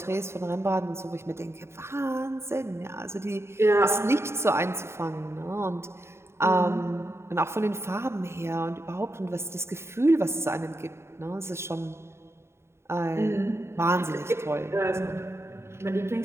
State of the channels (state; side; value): late; left; 0.13 ms